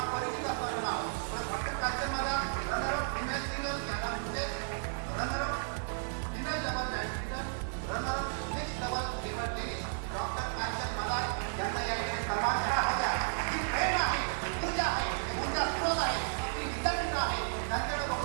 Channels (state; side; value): silent; left; 55 dB below the other